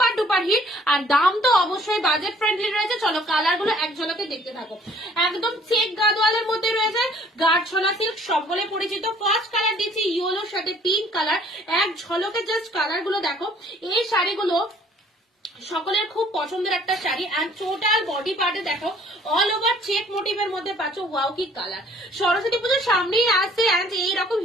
ডুপার হিট। আর দাম তো অবশ্যই বাজেট ফ্রেন্ডলি রয়েছে। চলো কালার গুলো এক ঝলকে দেখতে থাকো। একদম চেক গাডোয়ালের মধ্যে রয়েছে গাঢ়ছলা সিল্ক, সকলে পরিচিত। ফার্স্ট কালার দিচ্ছি ইয়েলোর সাথে পিঙ্ক কালার। এক ঝলকে জাস্ট কালার গুলো দেখো। এই শাড়িগুলো সকলের খুব পছন্দের একটা শাড়ি। এন্ড টোটাল বডি পার্টে দেখো অল ওভার চেক মোটিভের মধ্যে পাচ্ছ। ওয়াও কি কালার! সরস্বতী পুজোর সামনেই আসছে এন্ড এইরকম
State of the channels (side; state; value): both; normal; correlation 0.57